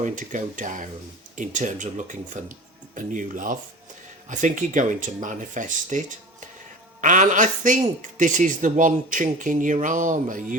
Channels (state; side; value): normal; both; correlation 0.36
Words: to go down in terms of looking for a new love. I think you're going to manifest it. And I think this is the one chink in your armour.